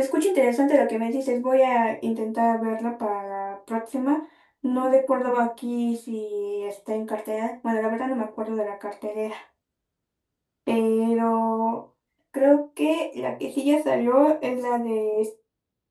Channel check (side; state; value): both; identical; correlation 1.00